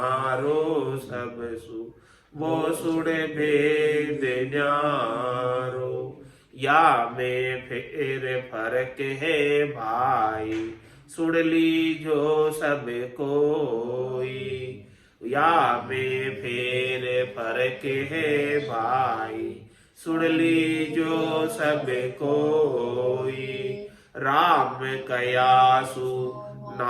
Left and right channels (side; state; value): both; identical; correlation 1.00